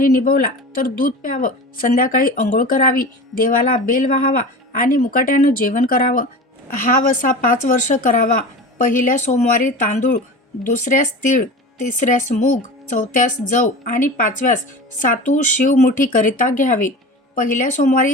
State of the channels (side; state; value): both; normal; correlation 0.32